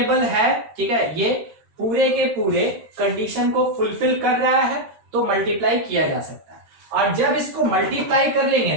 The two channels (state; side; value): late; left; 13 ms